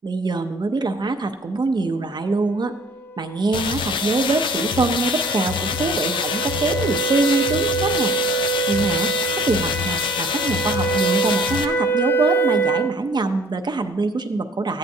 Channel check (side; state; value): both; normal; correlation 0.54